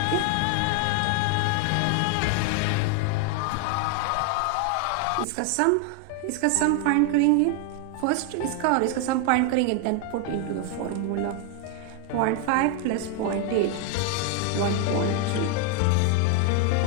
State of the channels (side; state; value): both; different; correlation 0.01